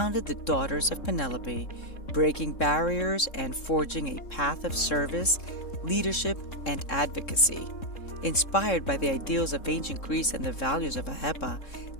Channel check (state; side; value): late; right; 3.7 ms